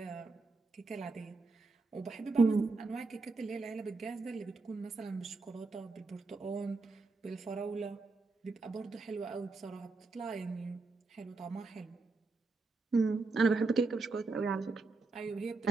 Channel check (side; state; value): left; quieter; 3.8 dB